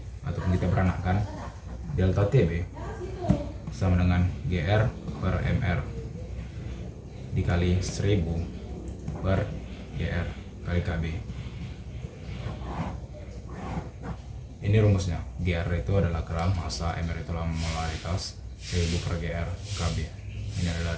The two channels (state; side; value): identical; both; correlation 1.00